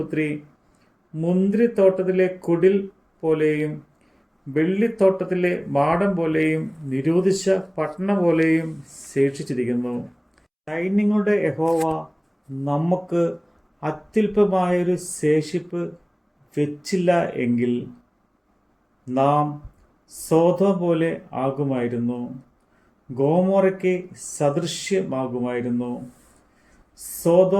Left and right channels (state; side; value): identical; both; correlation 1.00